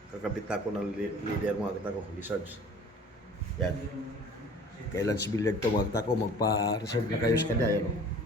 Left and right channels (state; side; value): normal; both; correlation 0.47